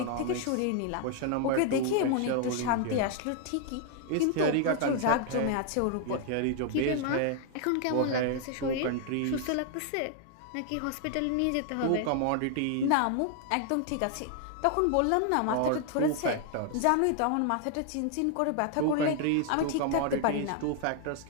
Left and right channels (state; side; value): different; both; correlation 0.00